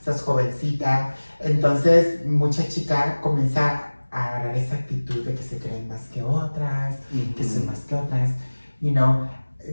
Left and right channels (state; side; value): inverted; both; correlation -1.00